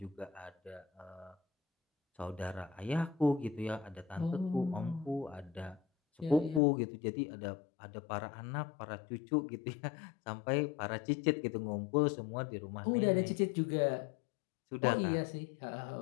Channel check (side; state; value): right; drops out; at 6.6 s